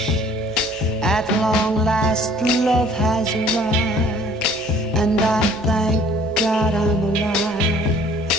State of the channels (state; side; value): normal; both; correlation 0.54